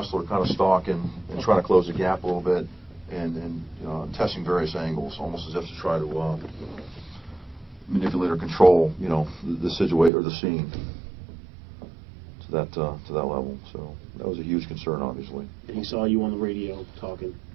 kind of stalking and trying to close the gap a little bit, and testing various angles, almost as if to try to manipulate or control, the situation or the scene to that level. So that was a huge concern, obviously. And he saw you on the radio talking.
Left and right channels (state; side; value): drops out; left; at 10.1 s